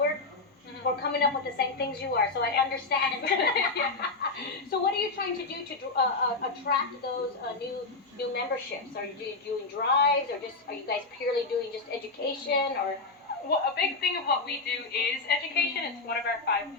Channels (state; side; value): quieter; right; 3.6 dB